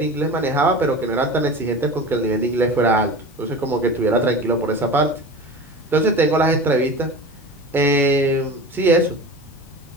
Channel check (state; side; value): normal; both; correlation 0.33